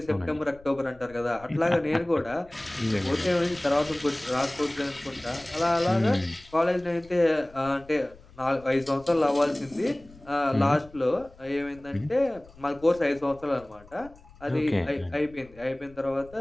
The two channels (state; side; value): noise; left; rumble, 23 dB below the sound